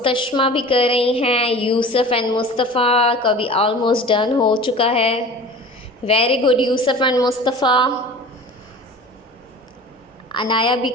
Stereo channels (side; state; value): both; normal; correlation 0.39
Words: भी कर रही हैं, यूसुफ एंड मुस्तफ़ा का भी ऑलमोस्ट डन हो चुका है। Very good Yusuf and Mustafa. Anaya भी